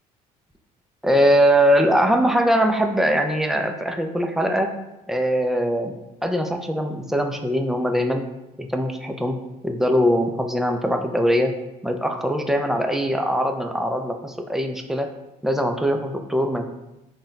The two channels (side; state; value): both; normal; correlation 0.77